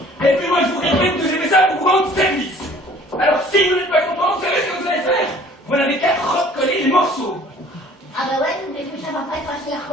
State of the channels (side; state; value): both; normal; correlation 0.52